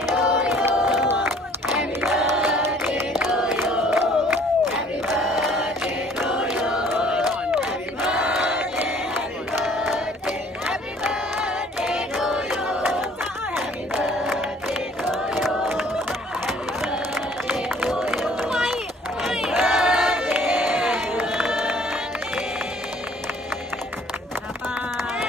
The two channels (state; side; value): normal; both; correlation 0.56